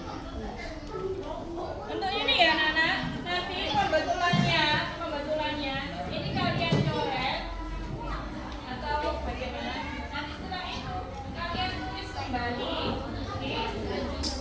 bentuknya nih ya anak-anak. Nanti pembetulannya ini kalian coret atau bagaimana? Nanti setelah itu kalian tulis kembali. Oke? Kalian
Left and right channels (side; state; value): both; identical; correlation 1.00